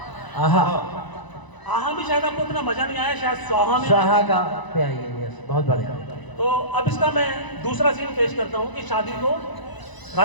आहा। आहा भी शायद आपको इतना मजा नहीं आया, शायद स्वाहा में। स्वाहा का पे आइए, यस, बहुत बढ़िया। तो अब इसका मैं दूसरा सीन पेश करता हूँ कि शादी को,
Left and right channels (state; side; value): late; right; 1.0 ms